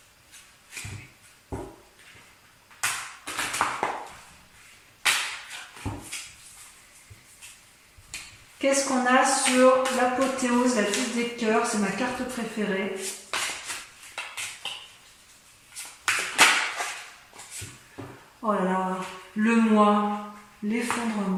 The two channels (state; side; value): identical; both; correlation 1.00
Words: Qu'est-ce qu'on a sur l'apothéose, la 10 des cœurs? C'est ma carte préférée. Oh là là, le moi,